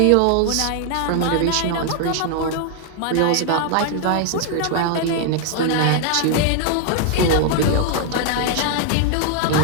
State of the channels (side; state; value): both; different; correlation 0.00